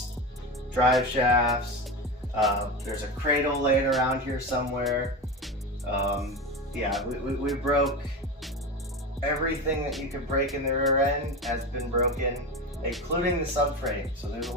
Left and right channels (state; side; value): normal; both; correlation 0.22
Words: drive shafts, there's a cradle laying around here somewhere. Yeah, we broke everything that you could break in the rear end has been broken, including the subframe. So there's a